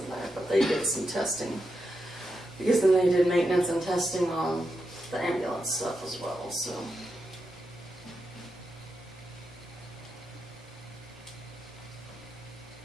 there, but they did some testing. Because then they did maintenance and testing on the ambulance stuff as well, so.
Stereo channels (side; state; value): both; normal; correlation 0.86